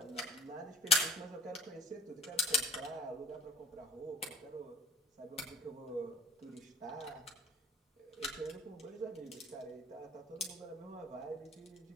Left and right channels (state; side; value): normal; both; correlation 0.49